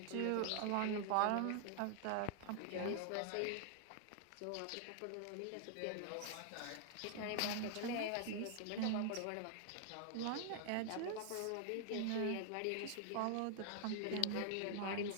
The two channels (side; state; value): both; different; correlation 0.00